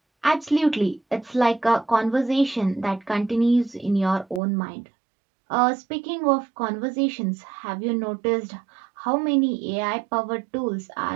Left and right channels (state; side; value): drops out; left; at 4.4 s